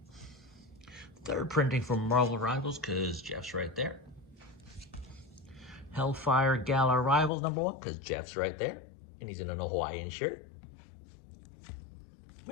3rd printing from Marvel Rivals, because Jeff's right there. Hellfire Gala Rivals number 1, because Jeff's right there. And he's in an Hawaiian shirt.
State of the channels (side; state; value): right; drops out; at 7.3 s